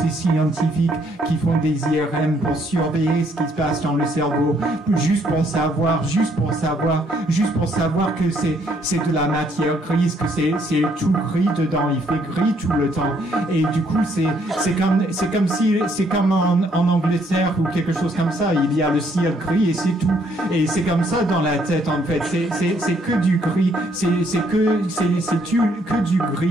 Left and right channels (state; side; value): normal; both; correlation 0.68